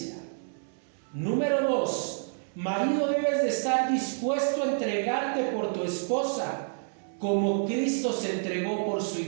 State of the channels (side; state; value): left; silent; 59 dB below the other